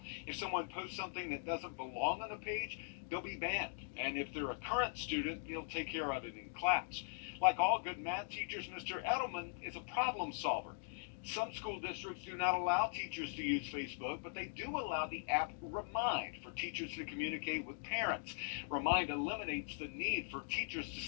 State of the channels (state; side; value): silent; right; digital silence